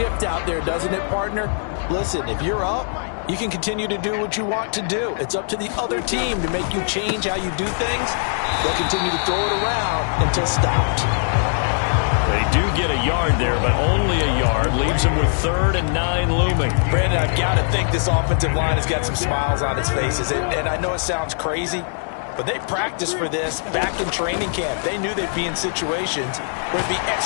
out there, doesn't it, partner? Listen, if you're up, you can continue to do what you want to do. It's up to the other team to make you change how you do things. They'll continue to throw it around until stopped. They do get a yard there, but only a yard. Leaves them with 3rd and 9 looming. Brandon, I've got to think this offensive line has got some smiles on its faces. And I know it sounds crazy, But they practiced for this back in training camp. They knew they'd be in situations where there'd be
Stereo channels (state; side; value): silent; right; digital silence